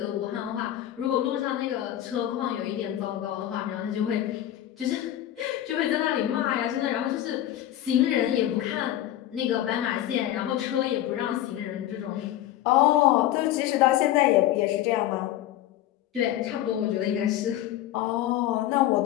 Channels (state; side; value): quieter; right; 12.9 dB